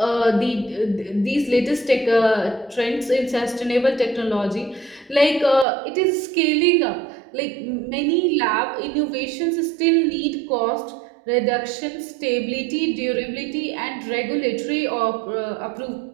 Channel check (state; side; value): drops out; left; at 5.7 s